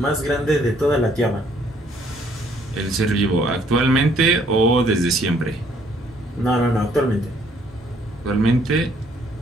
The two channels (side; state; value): both; normal; correlation 0.64